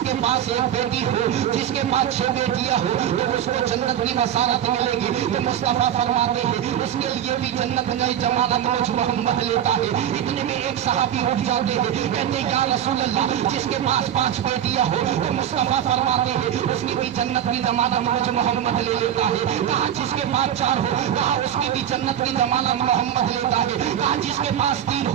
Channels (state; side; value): quieter; left; 10.2 dB